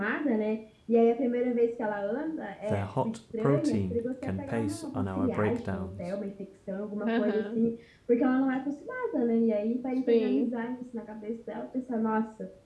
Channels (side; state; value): both; identical; correlation 1.00